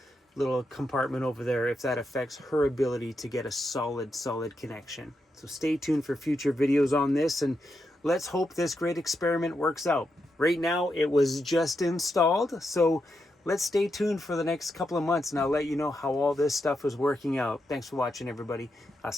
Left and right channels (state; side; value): normal; both; correlation 0.84